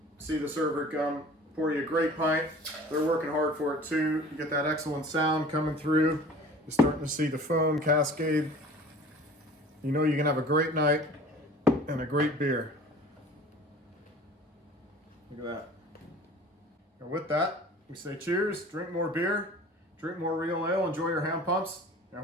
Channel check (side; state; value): both; normal; correlation 0.44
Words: see the server come, pour you a great pint. They're working hard for it too. You get that excellent sound coming through. You're starting to see the foam cascade. You know you can have a great night and a great beer. Look at that. And with that, we say cheers, drink more beer, drink more real ale, enjoy your hand pumps, and I